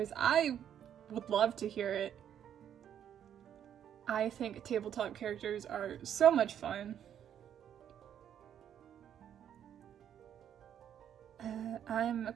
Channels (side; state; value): left; quieter; 9.5 dB